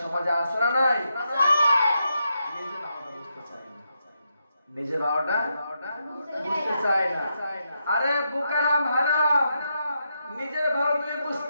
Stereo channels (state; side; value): inverted; both; correlation -0.83